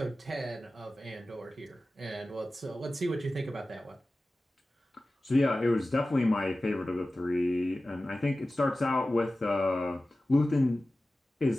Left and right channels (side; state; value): both; normal; correlation 0.95